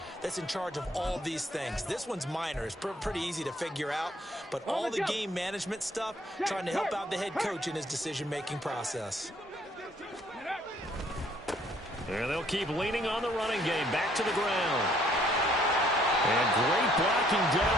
that's in charge of all these things. This one's minor. It's pretty easy to figure out. But all the game management stuff, trying to help out the head coach in his decision-making process. And they'll keep leaning on the running game. Back to the ground. And great blocking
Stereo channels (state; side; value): normal; both; correlation 0.64